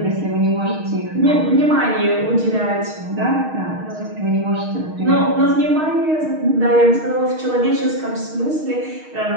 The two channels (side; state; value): left; late; 6.4 ms